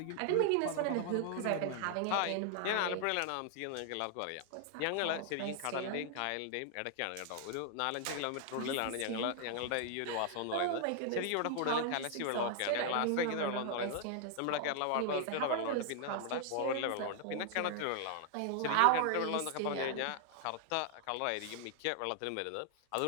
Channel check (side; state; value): both; different; correlation 0.00